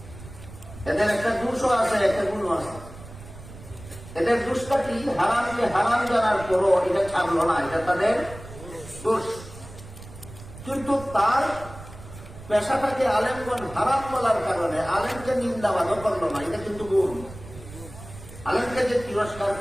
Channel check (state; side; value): noise; right; rumble, 16 dB below the sound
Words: এদের একটা দোষও আছে, একটা গুণও আছে। এদের দোষটা কি? হারামকে হারাম জানার পরও এটা ছাড়লো না, এটা তাদের দোষ। কিন্তু তার পেশাটাকে আলেমগণ হারাম বলার কারণে আলেমকে নিন্দাবাদও করলো না, এটা কিন্তু গুণ। আলেমকে যে তিরস্কার